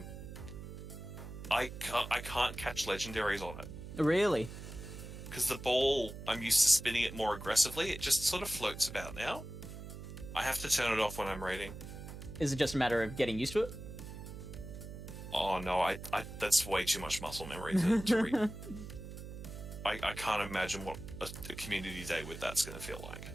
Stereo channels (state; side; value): noise; right; hum, 11 dB below the sound